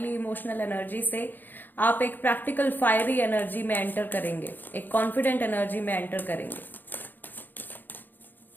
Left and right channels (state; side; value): late; right; 0.089 ms